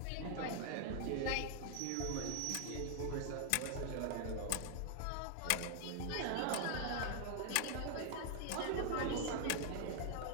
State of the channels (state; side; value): different; both; correlation 0.00